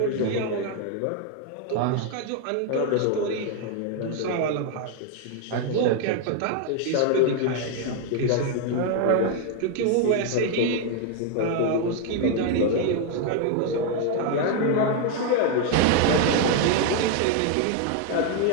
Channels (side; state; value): both; different; correlation 0.01